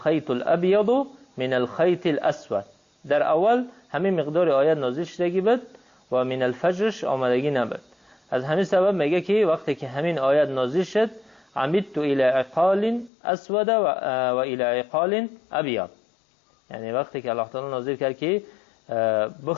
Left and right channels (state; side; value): drops out; right; at 13.1 s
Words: الأبيض من الخيط الأسود. در اول همین مقدار آیت نازل شدگی بود و من الفجرش آمدگی نبود. از همین سبب میگه که وقتی که همین آیت نازل شد عمدت الى عقال اسود و الى عقال ابيض، یعنی وقتی که الله تعالی نازل کرد که